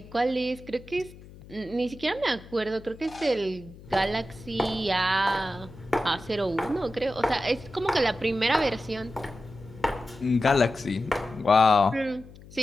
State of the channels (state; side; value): noise; left; hum, 19 dB below the sound